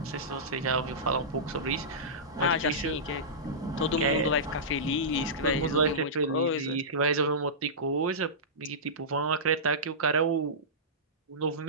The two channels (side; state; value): both; normal; correlation -0.17